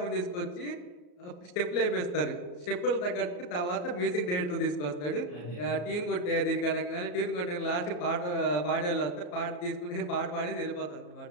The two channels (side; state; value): right; late; 34 ms